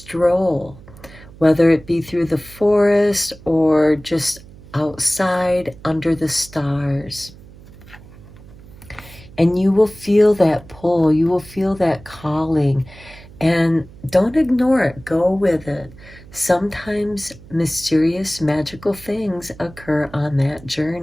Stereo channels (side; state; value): right; noise; hum, 20 dB below the sound